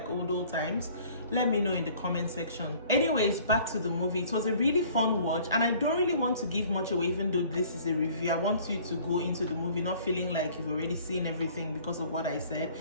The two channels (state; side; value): inverted; both; correlation -0.53